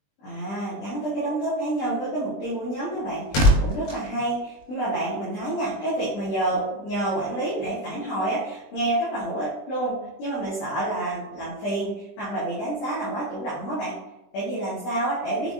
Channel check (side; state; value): right; late; 20 ms